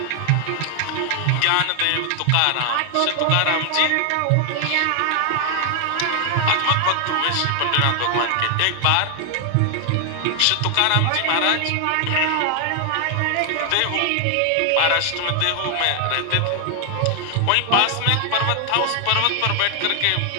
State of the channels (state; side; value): different; both; correlation 0.00